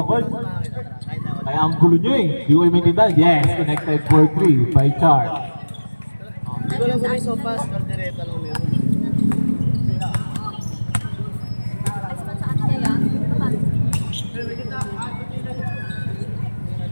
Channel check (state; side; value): inverted; both; correlation -1.00